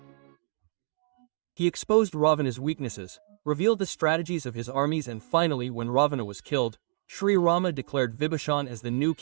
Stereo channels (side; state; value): left; silent; digital silence